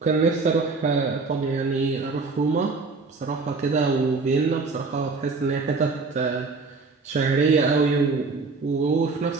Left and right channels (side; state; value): left; quieter; 4.1 dB